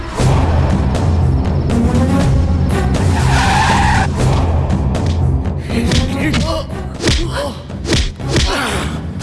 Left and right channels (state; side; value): identical; both; correlation 1.00